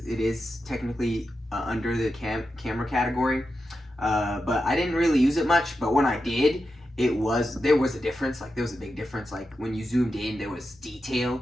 it is technically under the camera category. But I didn't really use it much. But when I did, there was a difference. Like, there was a big difference. Like, when you zoomed in, there was detail.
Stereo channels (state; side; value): normal; both; correlation 0.89